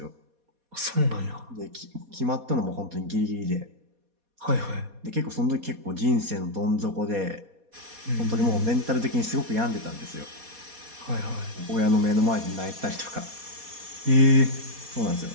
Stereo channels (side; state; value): left; late; 4.2 ms